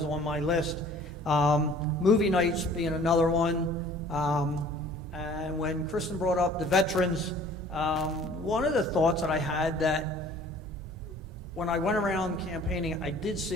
on my list. Movie nights being another one. And when Kristen brought up the veterans, one of the thoughts that I had that when I went around campaigning, I did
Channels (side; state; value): both; normal; correlation 0.51